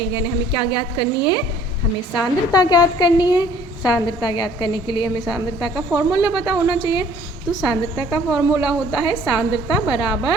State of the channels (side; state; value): both; normal; correlation 0.56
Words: यानी हमें क्या ज्ञात करनी है, हमें सांद्रता ज्ञात करनी है। सांद्रता ज्ञात करने के लिए हमें सांद्रता का फॉर्मूला पता होना चाहिए। तो सांद्रता का फॉर्मूला होता है सांद्रता